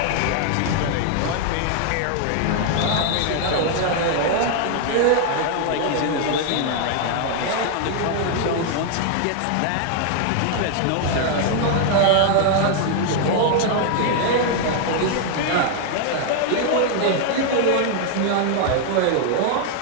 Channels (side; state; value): both; different; correlation 0.00